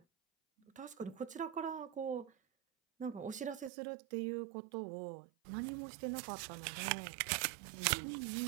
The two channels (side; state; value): left; drops out; at 3.7 s